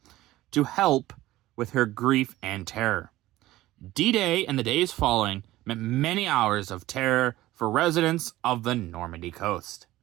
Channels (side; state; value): left; quieter; 16.5 dB